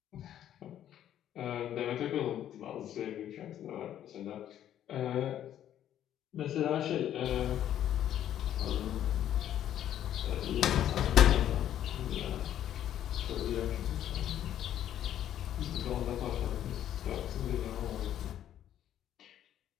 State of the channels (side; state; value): right; quieter; 11.0 dB